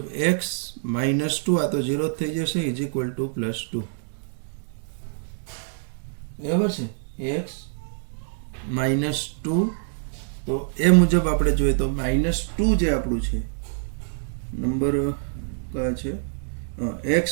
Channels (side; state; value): left; silent; digital silence